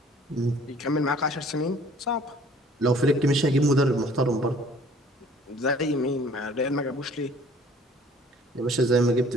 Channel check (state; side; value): normal; both; correlation 0.54